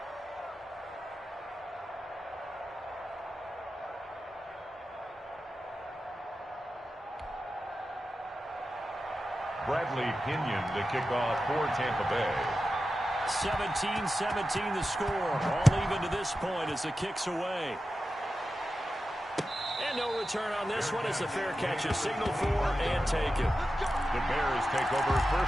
Bradley Pinion to kick off for Tampa Bay. 17-17 the score. All even to this point as the kick's away. And no return on this one as the fair catch is signaled for and taken. The Bears take over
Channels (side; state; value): both; normal; correlation 0.92